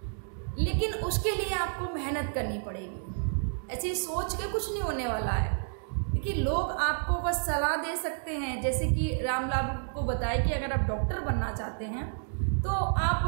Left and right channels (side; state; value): left; silent; digital silence